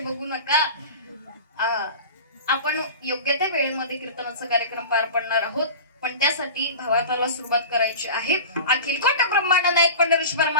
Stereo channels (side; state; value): both; inverted; correlation -0.34